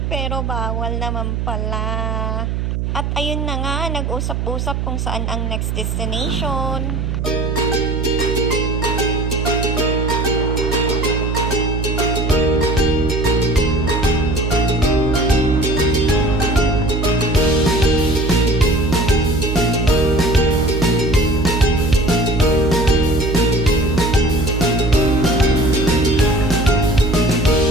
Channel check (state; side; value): noise; right; hum, 2 dB below the sound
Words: pero bawal naman pala. At ayun na nga, nag-usap-usap kung saan ang next destination.